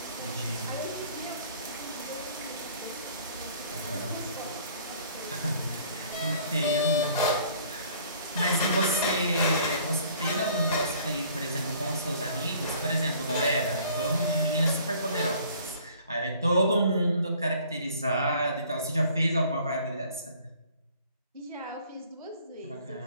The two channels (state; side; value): inverted; both; correlation -0.54